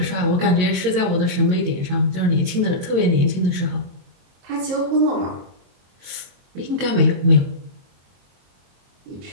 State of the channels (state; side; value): late; left; 22 ms